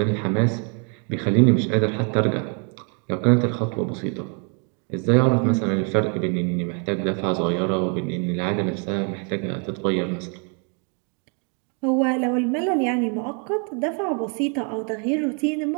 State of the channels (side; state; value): left; quieter; 38.0 dB